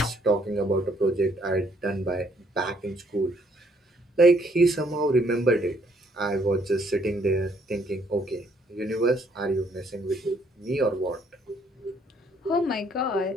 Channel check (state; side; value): normal; both; correlation 0.67